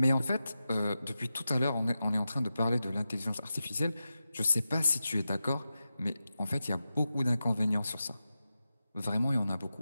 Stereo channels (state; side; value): inverted; both; correlation -0.92